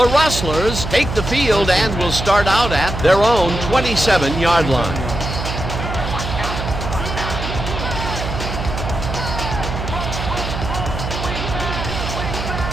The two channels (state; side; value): noise; right; hum, 5 dB below the sound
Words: Rustlers take the field and will start out at their own 27-yard line.